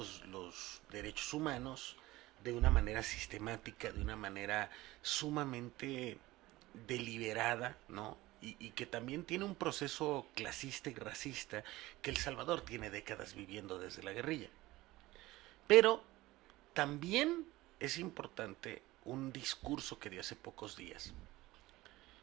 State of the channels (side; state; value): left; quieter; 18.5 dB